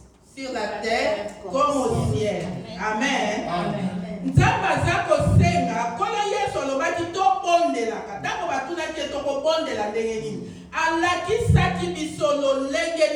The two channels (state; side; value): identical; both; correlation 1.00